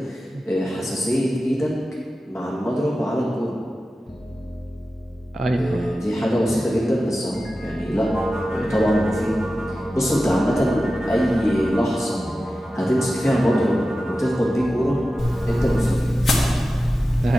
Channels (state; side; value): normal; both; correlation 0.94